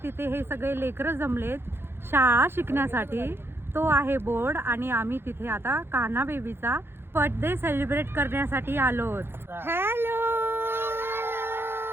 तिथे हे सगळे लेकरं जमलेत शाळा शिकण्यासाठी. तो आहे बोर्ड आणि आम्ही तिथे आता कान्हा बेबीचा बर्थडे सेलिब्रेट करण्यासाठी आलोत. हॅलो,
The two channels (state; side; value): late; left; 0.11 ms